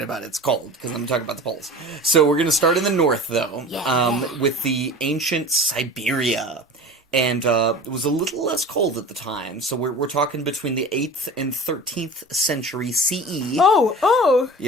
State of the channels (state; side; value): normal; both; correlation 0.37